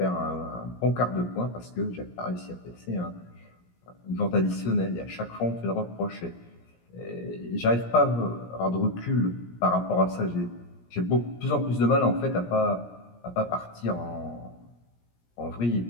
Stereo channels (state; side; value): late; right; 17 ms